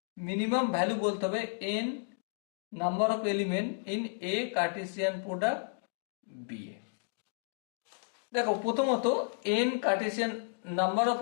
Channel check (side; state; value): right; silent; digital silence